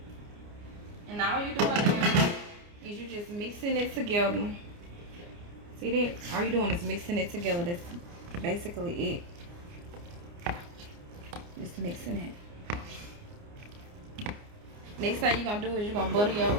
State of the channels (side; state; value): left; late; 29 ms